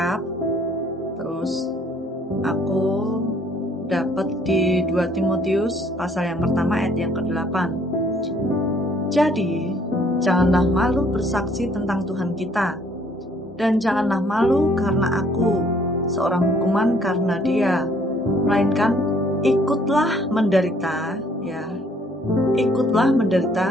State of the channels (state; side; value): normal; both; correlation 0.62